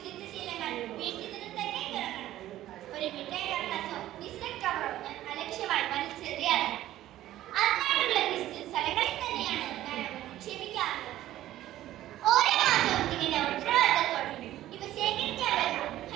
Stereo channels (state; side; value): quieter; left; 14.0 dB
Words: ശീലങ്ങൾ വീട്ടിൽ നിന്ന് തന്നെ തുടങ്ങണം. ഒരു മിഠായി കടലാസോ ബിസ്ക്കറ്റ് കവറോ ഞാൻ അലക്ഷ്യമായി വലിച്ചെറിയാറില്ല. അതിനായിട്ടുള്ള സ്ഥലങ്ങളിൽ തന്നെയാണ്